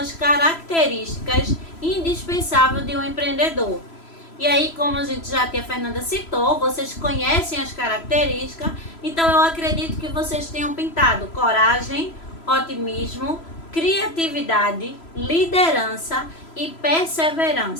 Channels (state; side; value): late; right; 3.0 ms